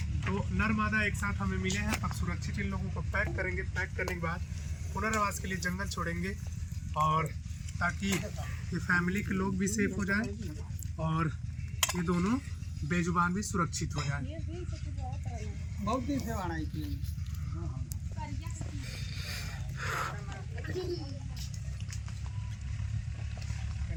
तो नर मादा एक साथ हमें मिले हैं। अब सुरक्षित इन लोगों को पैक करेंगे। पैक करने के बाद पुनर्वास के लिए जंगल छोड़ेंगे और ताकि ये फैमिली के लोग भी सेफ हो जाएं और ये दोनों बेजुबान भी सुरक्षित हो जाएं। बहुत दिन से आना है।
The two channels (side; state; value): both; identical; correlation 1.00